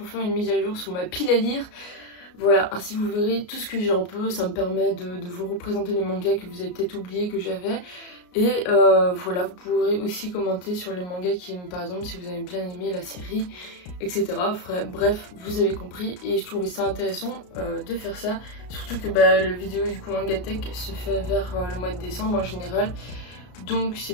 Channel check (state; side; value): late; right; 33 ms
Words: faire une mise à jour sur ma pile à lire. Voilà, ainsi vous verrez tout ce que j'ai un peu, ça me permet de vous représenter les mangas que vous avez peut-être oublié que j'avais. Et voilà, vous pourrez aussi commenter sur les mangas qui, par exemple, si vous avez bien aimé la série, etc. Bref, vous avez compris et je trouvais ça intéressant de faire ça. Surtout que le vidéo du coup Manga Tech se fait vers le mois de décembre en général. Donc c'est